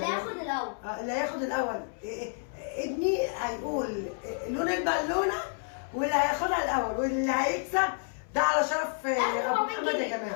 هياخد الاول. اللي هياخد الاول ابني هيقول لون البالونه واللي هياخدها الاول واللي هيكسب ده على شرف ابو محمد يا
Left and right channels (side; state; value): right; silent; 58 dB below the other